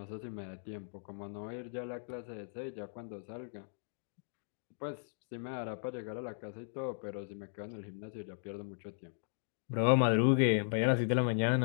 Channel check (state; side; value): silent; right; digital silence